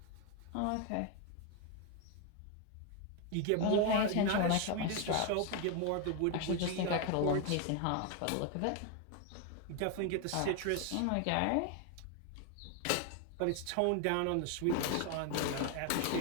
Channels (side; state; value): both; different; correlation 0.01